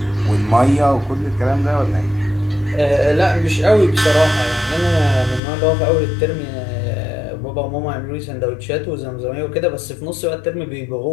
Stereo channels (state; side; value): drops out; right; at 5.4 s